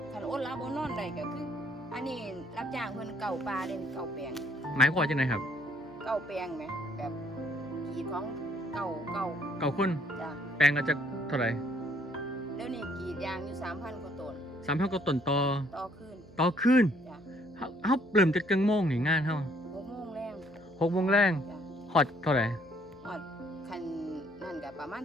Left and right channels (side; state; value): right; noise; hum, 22 dB below the sound